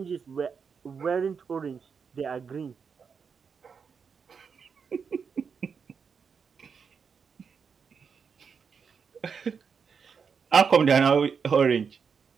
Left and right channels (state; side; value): quieter; left; 6.1 dB